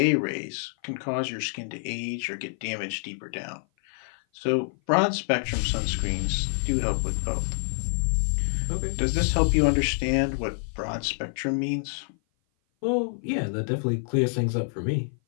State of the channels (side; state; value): right; silent; 56 dB below the other